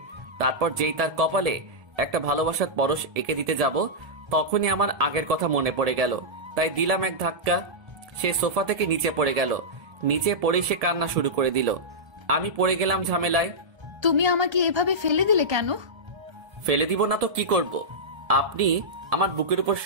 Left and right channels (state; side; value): late; left; 1.7 ms